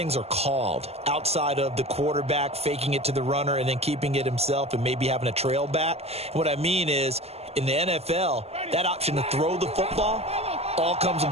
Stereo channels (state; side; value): late; left; 0.30 ms